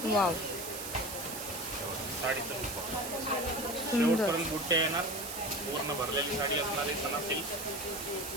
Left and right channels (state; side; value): noise; right; hiss, 7 dB below the sound